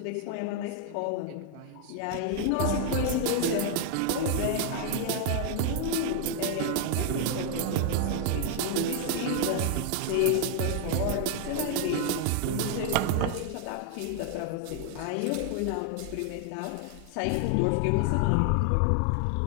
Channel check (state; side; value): different; both; correlation 0.00